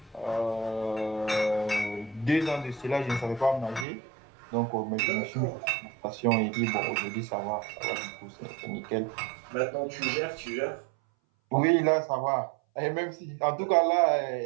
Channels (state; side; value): drops out; left; at 3.9 s